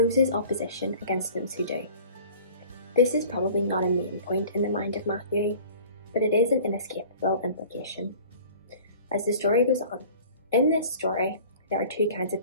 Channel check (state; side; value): inverted; both; correlation -0.46